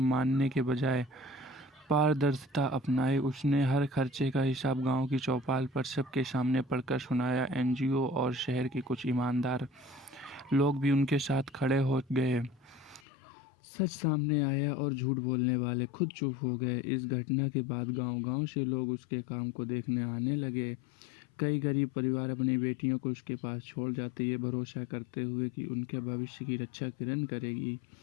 के बजाय पारदर्शिता अपनाई। उसने हर खर्चे का हिसाब गांव की चौपाल पर सबके सामने पढ़कर सुनाया। एनजीओ और शहर के कुछ ईमानदार लोग भी उनके साथ खड़े हो गए। सच सामने आया और झूठ बोलने वाले खुद चुप हो गए। इस घटना के बाद गांव-गांव से लोग उसके काम को देखने आने लगे। कई गरीब परिवार अपनी बेटियों को उसके पास छोड़ जाते, ये भरोसा करते हुए कि उनके भविष्य की रक्षा किरण करेगी।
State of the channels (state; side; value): drops out; right; at 13.0 s